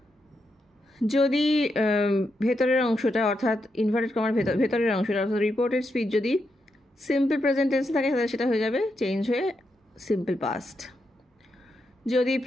যদি ভেতরের অংশটা অর্থাৎ ইনভার্টেড কমার ভেতরের অংশটা অর্থাৎ রিপোর্টেড স্পিচ যদি সিম্পল প্রেজেন্ট টেন্সে থাকে তাহলে সেটা হয়ে যাবে চেঞ্জ হয়ে সিম্পল পাস্ট। যদি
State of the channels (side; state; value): both; normal; correlation 0.83